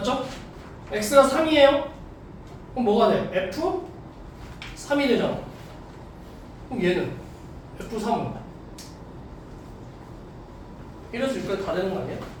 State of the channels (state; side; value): identical; both; correlation 1.00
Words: x가 3이에요. 그럼 뭐가 돼? f 3이 되잖아. 그럼 얘는 f3은 1에서 6까지 다 되는 거 아니야?